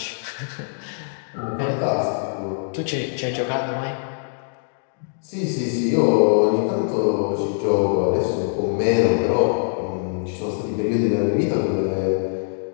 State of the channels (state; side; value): silent; right; digital silence